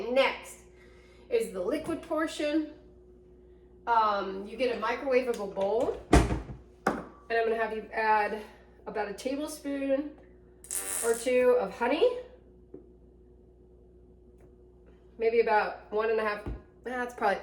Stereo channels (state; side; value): identical; both; correlation 1.00